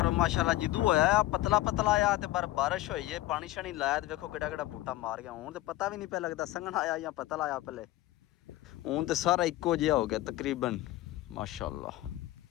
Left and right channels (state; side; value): quieter; right; 16.3 dB